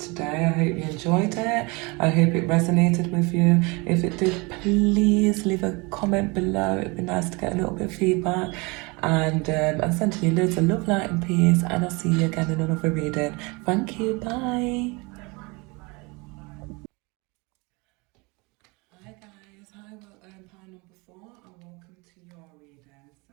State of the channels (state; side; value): quieter; left; 27.1 dB